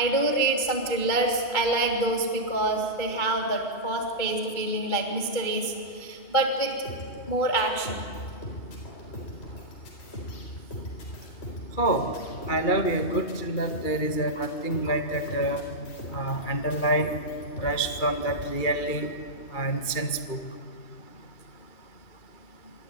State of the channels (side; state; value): right; late; 2.3 ms